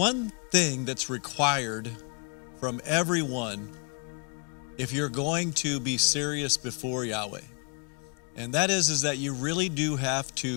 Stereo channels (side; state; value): right; quieter; 37.7 dB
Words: thing that's required from everyone if you're going to be serious before Yahweh. And that is that you really do have